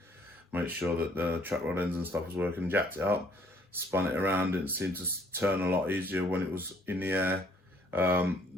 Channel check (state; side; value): normal; both; correlation 0.62